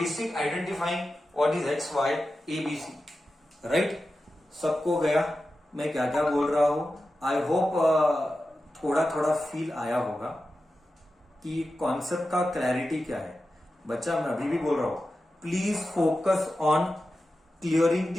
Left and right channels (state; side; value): normal; both; correlation 0.92